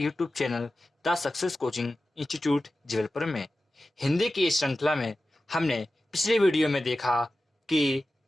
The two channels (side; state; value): both; normal; correlation 0.94